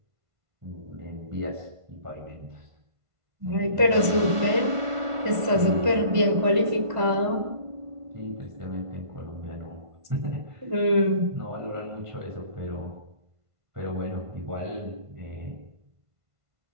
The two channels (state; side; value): late; left; 1.5 ms